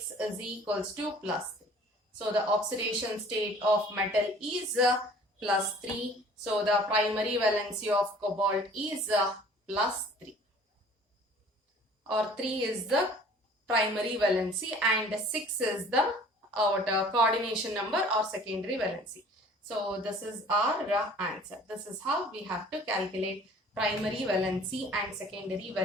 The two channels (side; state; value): both; normal; correlation 0.50